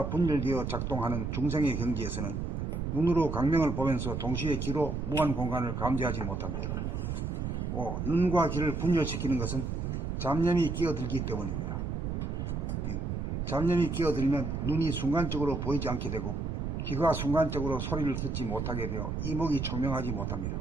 분열되어 작동하는 중생의 경지에서는 눈으로 광명을 보면서 동시에 귀로 무한 공간을 감지하지 못합니다. 5. 눈과 귀를 분열시키는 것은 잡념이 끼어들기 때문입니다. 잡념이 끼어들면 눈이 순간적으로 보이지 않게 되고 귀가 순간적으로 소리를 듣지 못하게 되어 이목이 총명하지 못합니다.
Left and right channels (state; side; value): noise; right; rumble, 2 dB below the sound